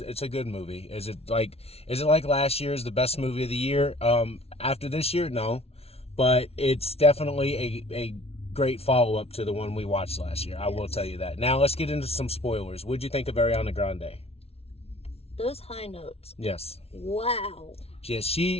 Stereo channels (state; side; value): late; right; 0.30 ms